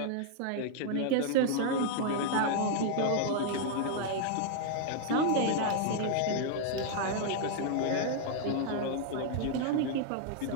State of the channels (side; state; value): both; different; correlation 0.00